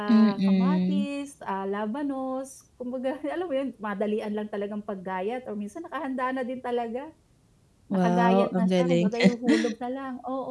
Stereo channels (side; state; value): both; identical; correlation 1.00